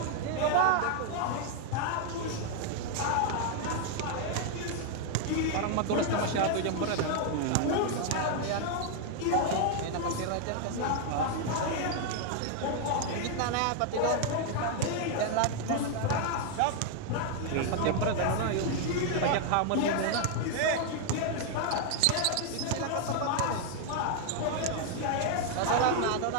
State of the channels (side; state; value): both; different; correlation 0.00